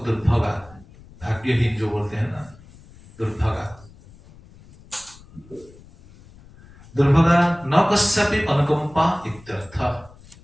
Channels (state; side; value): noise; left; rumble, 23 dB below the sound